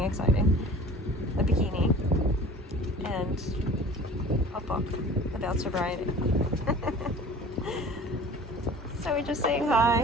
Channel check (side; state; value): both; normal; correlation 0.43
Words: exciting. A bikini. And a book about sobriety. So we're just saying